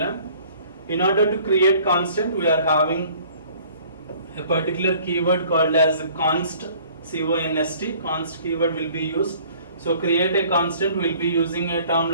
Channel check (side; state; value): both; inverted; correlation -0.54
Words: In order to create constant, we are having a particular keyword called as const, C-O-N-S-T. Const keyword will be used. So create a constant, we'll be using a term